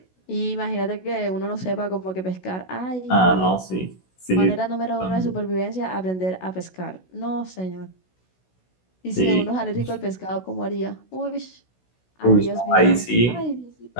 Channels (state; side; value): late; right; 16 ms